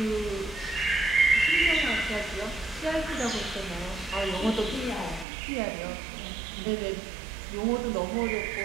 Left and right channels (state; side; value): drops out; left; at 5.2 s